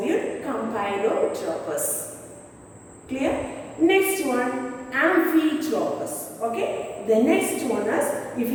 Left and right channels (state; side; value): identical; both; correlation 1.00